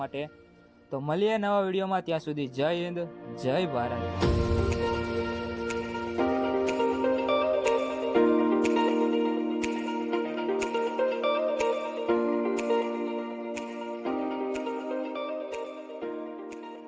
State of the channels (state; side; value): identical; both; correlation 1.00